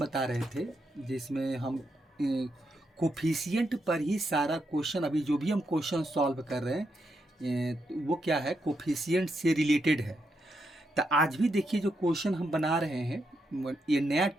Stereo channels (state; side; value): normal; both; correlation 0.82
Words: रहे थे जिसमें हम कोफिशिएंट पर ही सारा क्वेश्चन, अभी जो भी हम क्वेश्चन सॉल्व कर रहे हैं तो वो क्या है, कोफिशिएंट से रिलेटेड है। तो आज भी देखिए जो क्वेश्चन हम बना रहे हैं ये नया